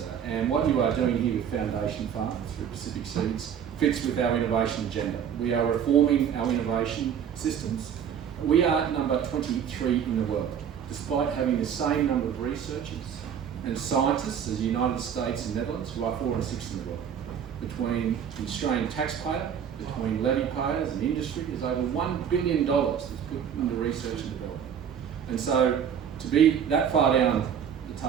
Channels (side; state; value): left; quieter; 8.3 dB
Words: And what you are doing here with Foundation Farms through Pacific Seeds fits with our innovation agenda. We are reforming our innovation systems. We are number 23 in the world, despite having the same number of researchers and scientists as the United States and Netherlands, who are 4 and 6 in the world. Between the Australian taxpayer, between levy payers and industry, there's over $1 billion that's put into research and development. And so to be that far down the